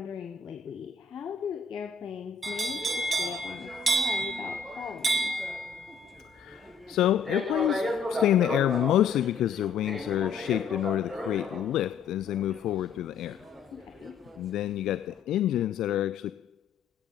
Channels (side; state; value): right; quieter; 6.3 dB